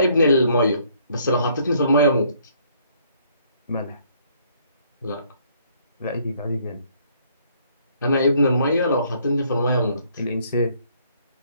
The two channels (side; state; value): both; inverted; correlation -0.65